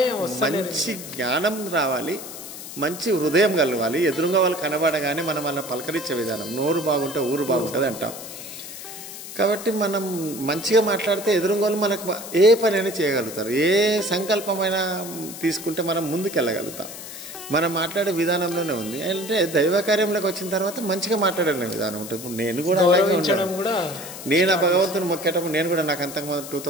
మంచి జ్ఞానం రావాలి, మంచి హృదయం కలవాలి, ఎదురుగా వాళ్ళు కనబడగానే మనం వాళ్ళని పలకరించే విధానం, నోరు బాగుంటే ఊరు బాగుంటుంది అంటాం. కాబట్టి మనం మంచిగా మాట్లాడితే ఎదురుగా వాళ్ళు మనకు ఏ పనైనా చేయగలుగుతారు, ఏ సంకల్పమైనా తీసుకుంటే మనం ముందుకు వెళ్ళగలుగుతాం. మనం మాట్లాడే విధానంలోనే ఉంది. అంటే దైవ కార్యంలోకి వచ్చిన తర్వాత మంచిగా మాట్లాడే విధానం ఉంటుంది. ఇప్పుడు నేను కూడా అలాగే ఉంటాను. నేను ఆ భగవంతుని మొక్కేటప్పుడు నేను కూడా, నాకు అంతకుముందు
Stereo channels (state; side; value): noise; left; hiss, 11 dB below the sound